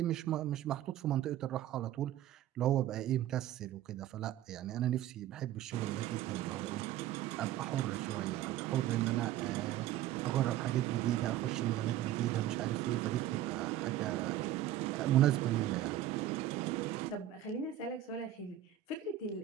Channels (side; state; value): left; quieter; 12.7 dB